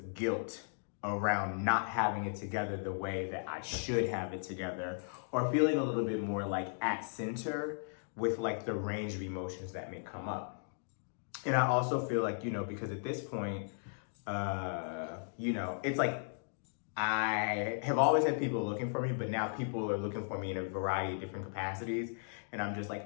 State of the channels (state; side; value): silent; right; digital silence